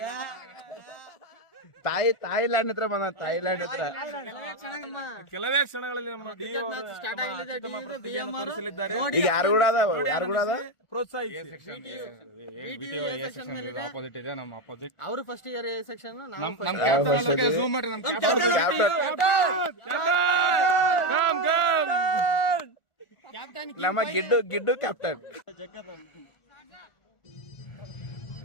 ಥೈಲ್ಯಾಂಡ್ ಹತ್ರ ಬಂದ. ಥೈಲ್ಯಾಂಡ್ ಹತ್ರ ಕೆಲವೇ ಕ್ಷಣಗಳಲ್ಲಿ ನಮ್ಮ ತೋರಿಸಲಿದ್ದಾರೆ. ಈಗ ಯಾರು ಕೂಡ ಅದ ಆಪೋಸಿಟ್ ಇದೆ ನಮ್ಮ ಆಪೋಸಿಟ್. ಅವರು ಫಸ್ಟ್ ಇಯರ್ ಸೆಕ್ಷನ್ ಝೂಮ್ ಮಾಡ್ರಿ. ನಮ್ಮ ಗಿಡ್ಡು ಕ್ಯಾಪ್ಟನ್.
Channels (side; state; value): right; late; 1.4 ms